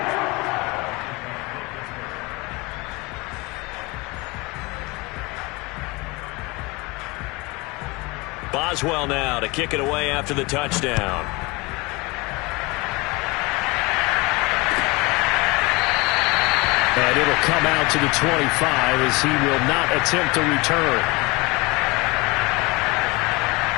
Boswell now to kick it away after the touchdown. And it'll come out to the 25 as he will not attempt to return.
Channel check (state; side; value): quieter; right; 25.0 dB